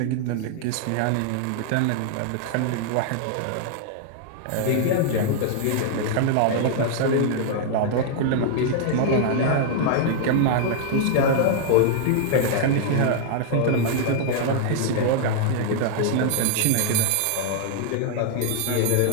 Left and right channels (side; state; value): both; different; correlation -0.01